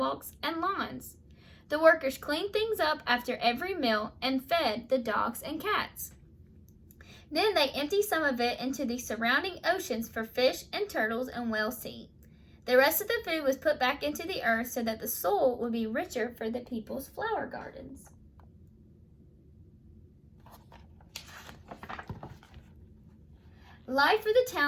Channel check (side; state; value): both; identical; correlation 1.00